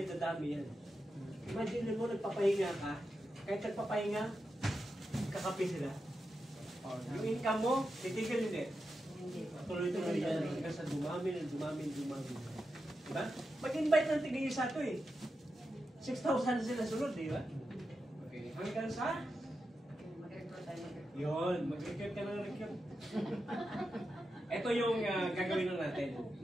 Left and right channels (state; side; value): normal; both; correlation 0.89